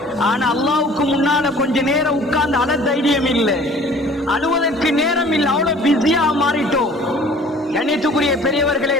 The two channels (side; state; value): both; normal; correlation 0.50